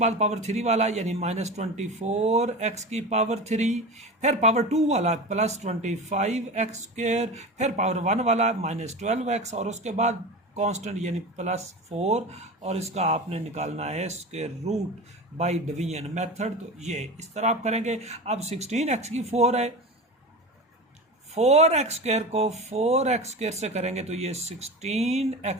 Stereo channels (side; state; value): both; normal; correlation 0.29